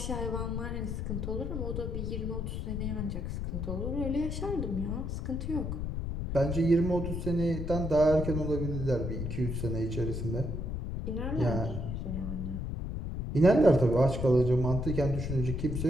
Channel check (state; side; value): noise; left; rumble, 3 dB below the sound